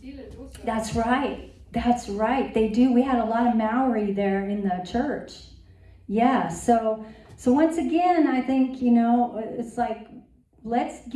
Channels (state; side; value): identical; both; correlation 1.00